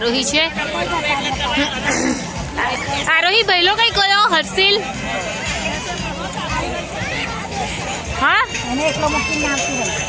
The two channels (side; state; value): both; identical; correlation 1.00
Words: છે. આરોહી ભઈલો કઈ કયો હર્ષિલ હા